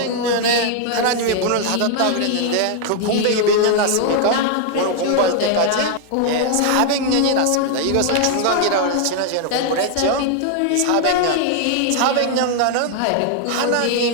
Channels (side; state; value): both; different; correlation 0.00